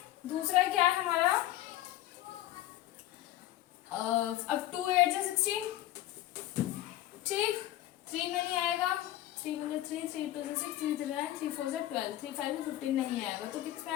दूसरा क्या है हमारा, अब 2 8 जा 16, ठीक। 3 में नहीं आएगा, 3 में 3, 3 2 से 6, 3 3 9, 3 4 से 12, 3 5 में 15 नहीं आएगा, तो किस में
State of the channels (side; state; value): right; quieter; 14.5 dB